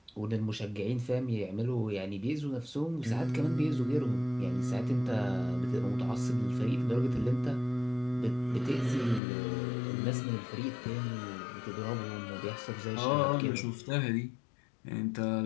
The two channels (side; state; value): right; drops out; at 9.2 s